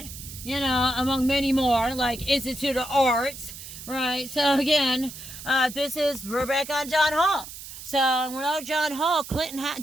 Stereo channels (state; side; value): noise; right; hiss, 13 dB below the sound